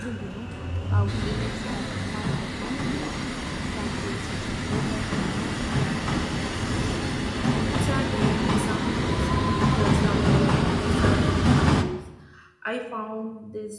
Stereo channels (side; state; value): both; identical; correlation 1.00